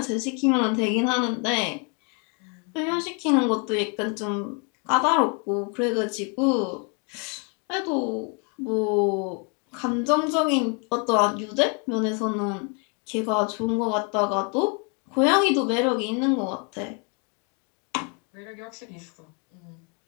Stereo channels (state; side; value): quieter; right; 36.4 dB